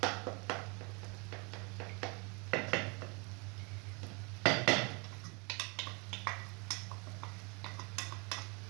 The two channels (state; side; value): quieter; left; 31.3 dB